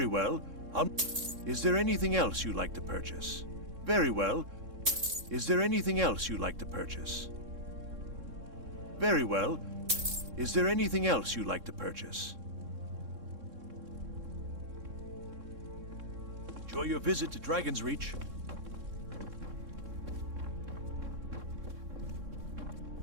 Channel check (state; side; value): late; left; 3.6 ms